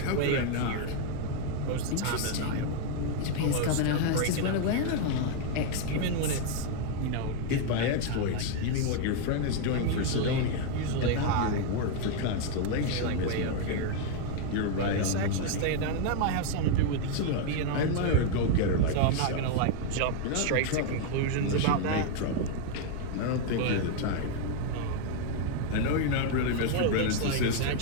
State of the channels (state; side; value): different; both; correlation 0.00